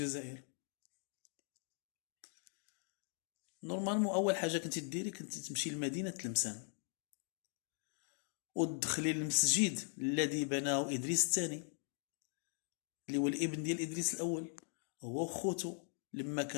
نورمالمون اول حاجه كنتي ديري كنتي تمشي لمدينه تلمسان وتدخلي للمسجد الذي بناه ادريس الثاني، اللي هو الابن ديال ادريس الاول، هو وخوتو لما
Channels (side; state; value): right; silent; 51 dB below the other